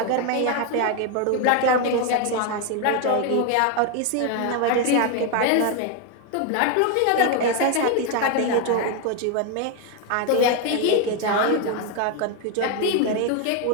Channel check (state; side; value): different; both; correlation 0.01